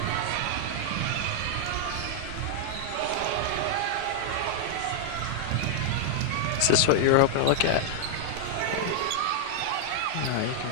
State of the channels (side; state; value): both; different; correlation -0.01